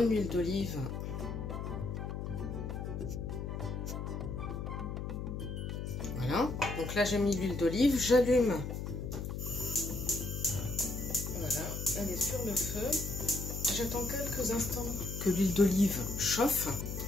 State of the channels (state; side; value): noise; left; hum, 4 dB below the sound